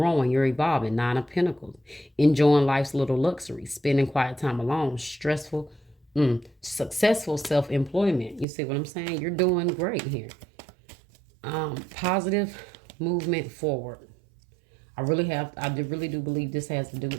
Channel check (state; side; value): drops out; left; at 8.5 s